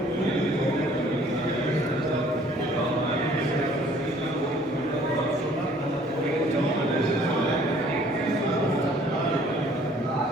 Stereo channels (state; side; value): normal; both; correlation 0.57